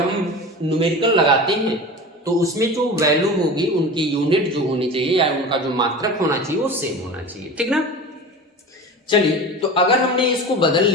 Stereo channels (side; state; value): both; normal; correlation 0.32